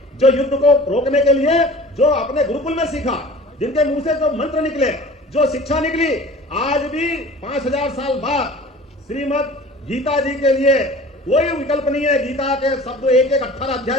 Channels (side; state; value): both; normal; correlation 0.43